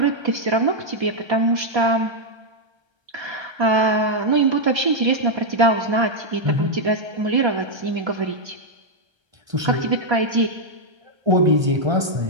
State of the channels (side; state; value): left; late; 1.3 ms